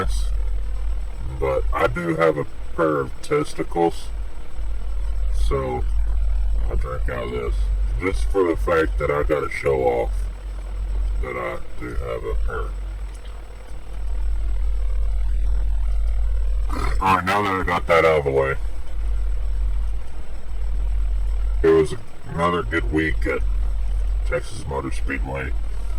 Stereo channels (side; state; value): both; identical; correlation 1.00